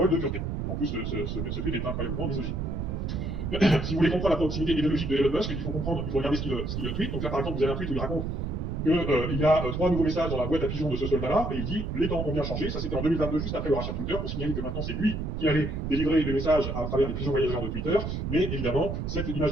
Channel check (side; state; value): right; noise; rumble, 3 dB below the sound